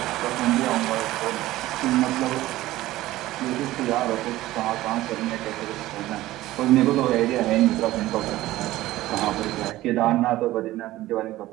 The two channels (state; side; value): quieter; left; 16.3 dB